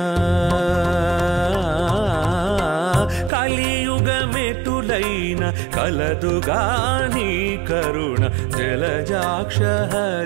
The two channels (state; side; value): drops out; left; at 3.3 s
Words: కలియుగమెటులైన కలదుగా నీ కరుణ జలజాక్ష